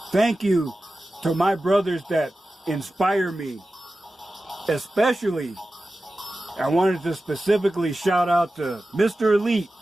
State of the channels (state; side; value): normal; both; correlation 0.94